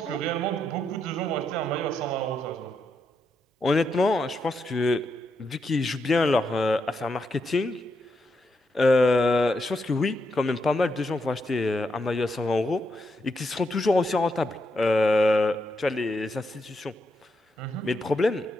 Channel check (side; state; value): both; normal; correlation 0.82